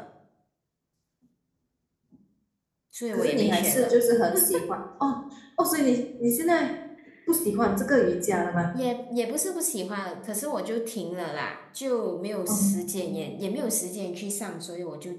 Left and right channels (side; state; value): both; identical; correlation 1.00